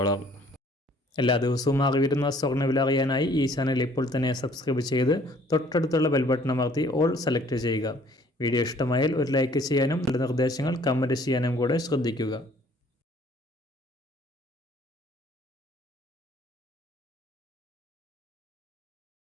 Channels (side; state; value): both; normal; correlation 0.57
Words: എല്ലാ ദിവസവും അറിവിരുന്ന സ്വർണ്ണവില അറിയാനായി ഈ ചാനൽ ഇപ്പോൾ തന്നെ സബ്സ്ക്രൈബ് ചെയ്ത് തൊട്ടടുത്തുള്ള ബെൽ ബട്ടൺ അമർത്തി ഓൾ സെലക്ട് ചെയ്യുക. വീഡിയോ ഇഷ്ടമായാൽ ഒരു ലൈക്ക് ചെയ്യാനും നല്ല നിർദ്ദേശങ്ങൾ കമൻറ്റ് ചെയ്യാനും കൂടെ ശ്രദ്ധിക്കുക.